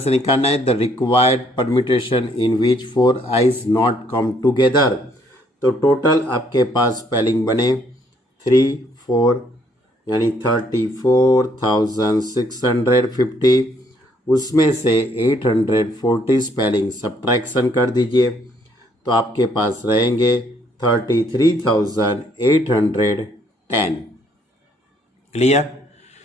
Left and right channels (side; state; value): both; normal; correlation 0.67